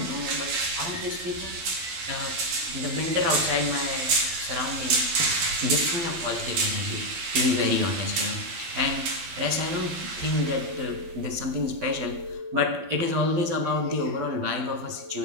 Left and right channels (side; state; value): left; late; 12 ms